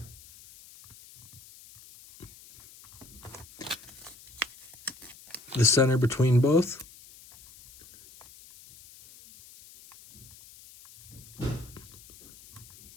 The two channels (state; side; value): noise; left; hiss, 21 dB below the sound